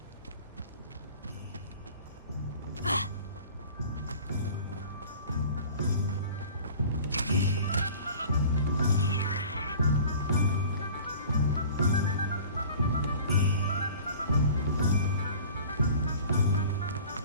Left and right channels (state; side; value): inverted; both; correlation -0.44